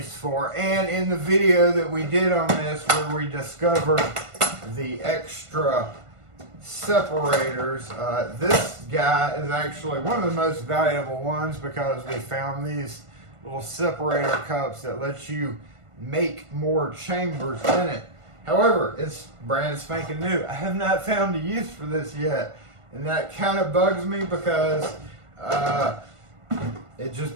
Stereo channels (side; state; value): left; late; 1.5 ms